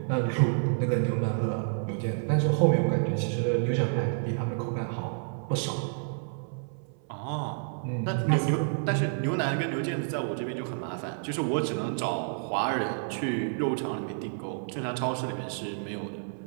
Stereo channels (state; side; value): silent; left; 58 dB below the other